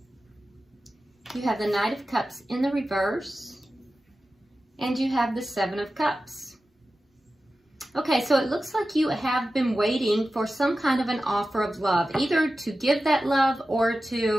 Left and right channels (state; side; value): normal; both; correlation 0.94